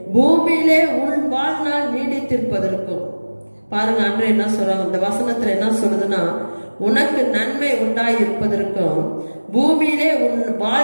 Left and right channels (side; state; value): both; inverted; correlation -1.00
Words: பூமியிலே உன் வாழ்நாள் நீடித்திருப்பதற்கும். பாருங்க, அன்று என்ன சொல்றாங்க, இந்த வசனத்துல என்ன சொல்லுதுன்னா, உனக்கு நன்மை உண்டாயிருப்பதற்கும் பூமியிலே உன்